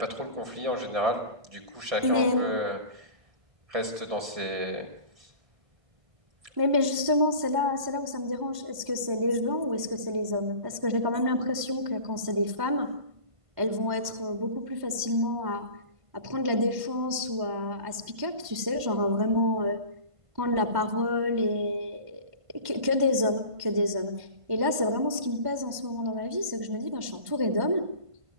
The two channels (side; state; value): left; late; 1.5 ms